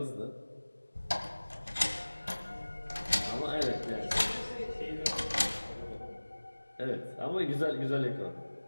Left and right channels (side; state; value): both; inverted; correlation -1.00